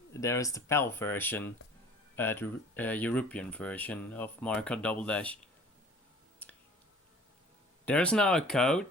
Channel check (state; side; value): normal; both; correlation 0.48